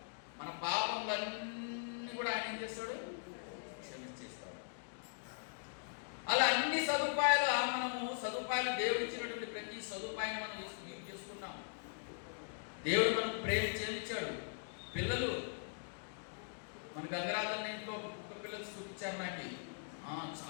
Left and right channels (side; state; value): right; silent; digital silence